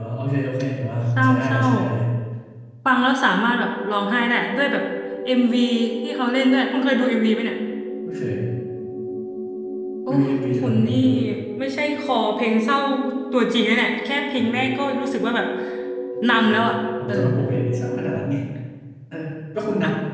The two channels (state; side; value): identical; both; correlation 1.00